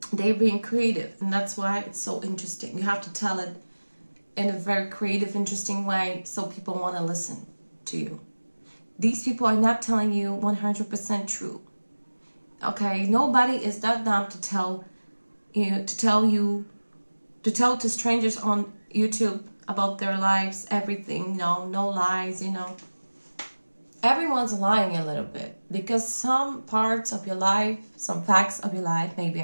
They're being creative, and that's why it's so interesting. You have to tell it in a very creative, interesting way so people want to listen to you. These people are not telling you 100% true. Okay, nobody is that dumb to tell to strangers on YouTube about their lives, everything, no lies, Everyone's lying a little bit because some parts of your life, some facts of your life may be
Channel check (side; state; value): both; inverted; correlation -1.00